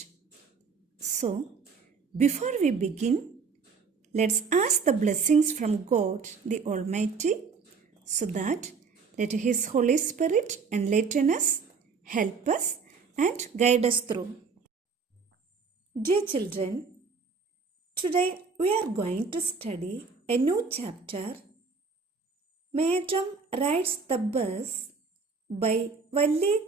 So, before we begin, let's ask the blessings from God the Almighty so that let His Holy Spirit enlighten us, help us, and guide us through. Dear children, today we are going to study a new chapter, Madam Rides the Bus by Valli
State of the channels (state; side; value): quieter; left; 5.1 dB